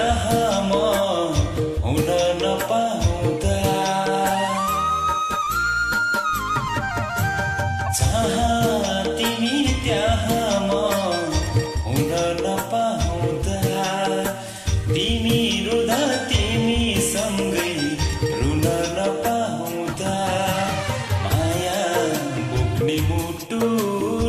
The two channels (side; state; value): both; identical; correlation 1.00